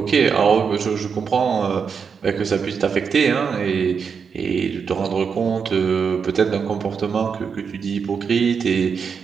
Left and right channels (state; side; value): quieter; left; 6.2 dB